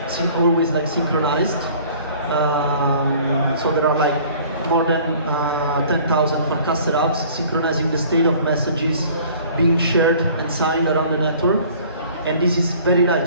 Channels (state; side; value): inverted; both; correlation -0.51